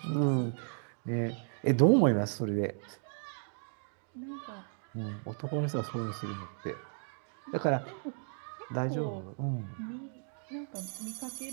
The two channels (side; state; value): left; silent; 55 dB below the other